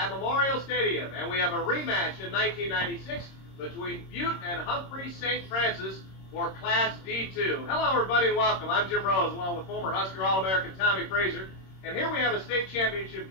Memorial Stadium. And we have a rematch in 1996 between Butte and Humphrey St. Francis for Class D2. Hello, everybody, and welcome. I'm Jim Rose, along with former Husker All-American Tommie Frazier. And here we have a state championship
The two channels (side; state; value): right; late; 26 ms